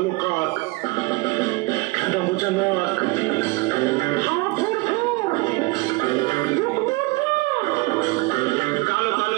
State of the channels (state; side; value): quieter; left; 23.8 dB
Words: কাক, খেদা বোঝা নাক, কালো কালো